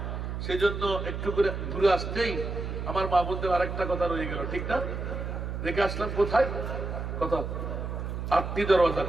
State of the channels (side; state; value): right; noise; hum, 4 dB below the sound